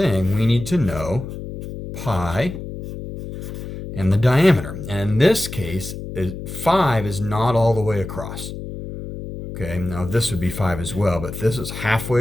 we need to know pi and the diameter. And in this case, 5 is not all the way across. Okay, now this would be 5 as well, but this is halfway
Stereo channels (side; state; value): left; noise; hum, 9 dB below the sound